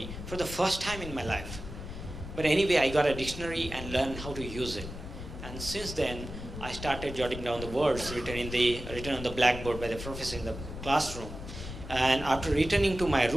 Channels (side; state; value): left; noise; rumble, 10 dB below the sound